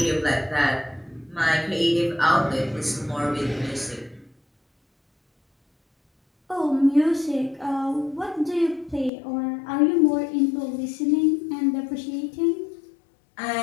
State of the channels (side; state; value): right; drops out; at 9.1 s